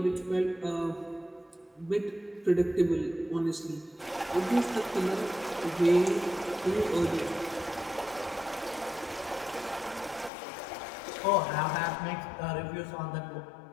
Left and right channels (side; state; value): right; drops out; at 10.3 s